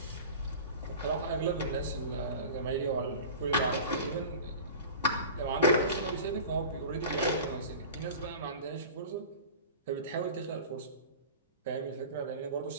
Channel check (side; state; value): both; inverted; correlation -0.37